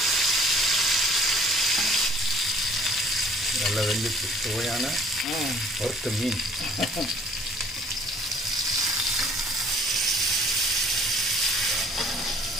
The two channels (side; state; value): both; normal; correlation 0.56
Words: நல்லா வெந்துச்சு. சுவையான வறுத்த மீன்.